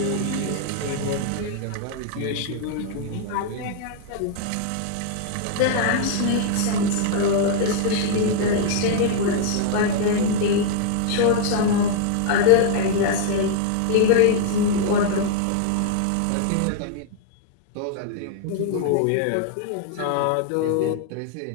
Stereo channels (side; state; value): both; different; correlation 0.00